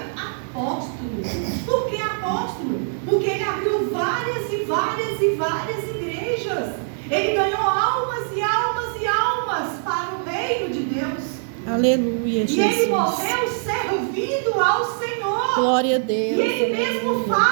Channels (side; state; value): left; silent; 58 dB below the other